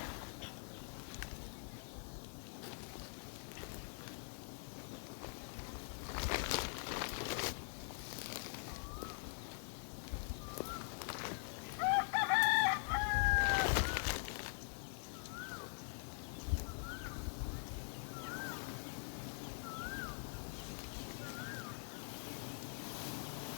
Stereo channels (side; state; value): right; silent; digital silence